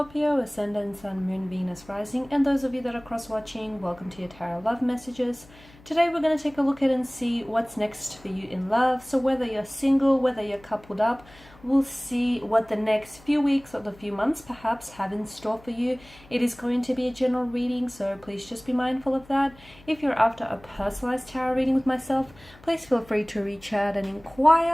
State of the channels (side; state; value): left; noise; hum, 24 dB below the sound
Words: Ascendant, Sun, Moon, Venus, Rising, and those of you that are cross-watching, welcome to your Tarot Love Messages. Today we're going to take a look at and see what's next for you in love. So whether you're single, whether you're coupled up, we'll see what the next few weeks or the few months perhaps have in store for you. It is going to be a general reading, so please just be mindful of that. If you're after a personalized tarot reading with myself, please feel free to reach out and